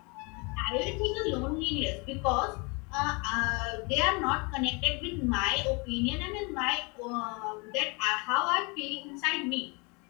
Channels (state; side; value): quieter; right; 30.2 dB